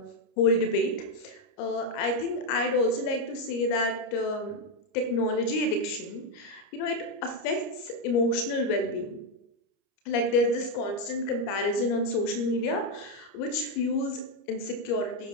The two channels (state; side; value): late; right; 30 ms